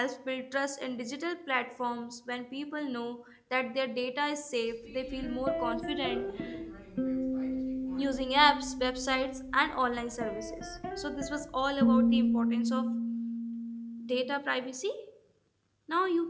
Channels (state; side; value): identical; both; correlation 1.00